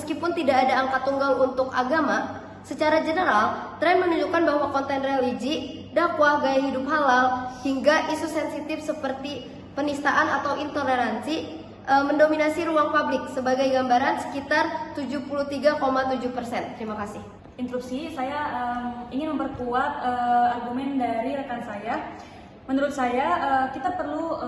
tidak ada angka tunggal untuk agama, secara general, tren menunjukkan bahwa konten religi dakwah, gaya hidup halal, hingga isu sensitif seperti penistaan atau intoleransi mendominasi ruang publik. Sebagai gambaran sekitar 73,7%. Terima kasih. Interupsi, saya ingin memperkuat argumen dari rekan saya. Menurut saya kita perlu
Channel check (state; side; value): identical; both; correlation 1.00